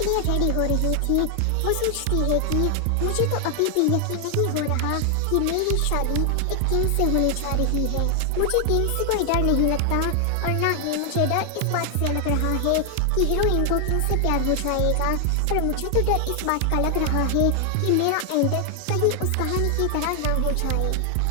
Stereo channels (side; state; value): both; different; correlation 0.00